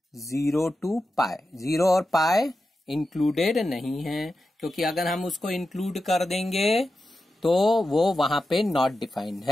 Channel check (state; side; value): normal; both; correlation 0.91